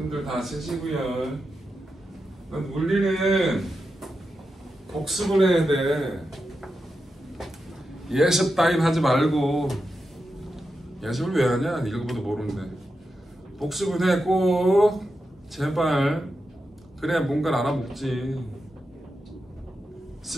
다 쓰시고요. 물리는 복습을 해야 돼. 예습 따윈 하지 말고. 예습을 왜 하냐? 읽어봐도 모르는데. 복습을 해 꼭. 제발. 그래야 뭔가를 알아먹지.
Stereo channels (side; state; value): both; normal; correlation 0.89